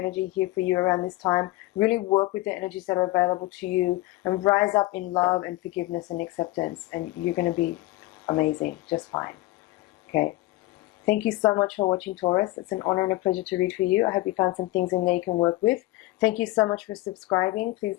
here for you around this time. Really work with the energies that are available to you and rise up in love and forgiveness and acceptance, and you're going to be amazing, just fine. Okay. Thank you so much for watching, Taurus. It's an honor and a pleasure to read for you. I hope you found some things in there you can work with. Thank you so much for subscribing.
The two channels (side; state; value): right; quieter; 19.0 dB